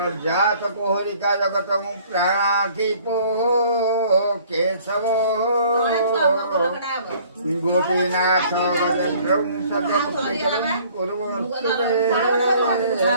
जात कोहरिका जगत प्राणीपो केशव गोपीनाथ गजेन्द्र मंगल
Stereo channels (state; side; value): inverted; both; correlation -0.55